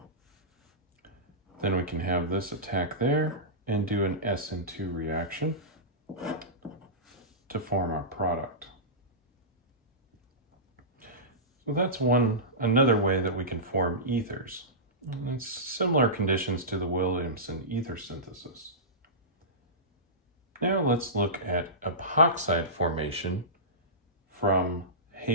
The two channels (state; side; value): normal; both; correlation -0.18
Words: Then we can have this attack there and do an SN2 reaction to form our product. So that's another way that we can form ethers. And it's similar conditions to the Williamson ether synthesis. Now let's look at epoxide formation from